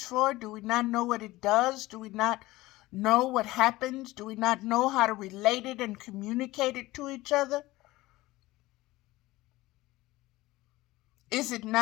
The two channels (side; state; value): right; quieter; 18.7 dB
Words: for? Do we not know what it does? Do we not know what happens? Do we not know how to relate it and communicate it to each other? Is it